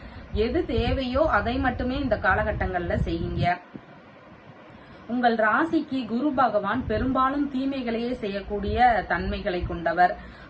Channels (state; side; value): identical; both; correlation 1.00